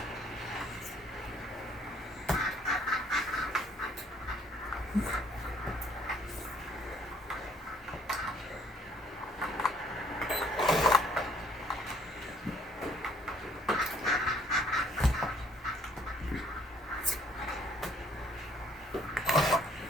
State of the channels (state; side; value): normal; both; correlation 0.61